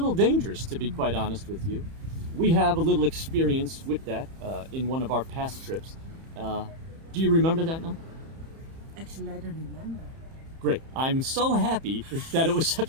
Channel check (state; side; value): late; left; 30 ms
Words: dangerous, to be quite honest with you. We have a little experience with that in one of our past trips. Do you remember that now? Actually, I don't remember. Great. I'm so happy that it was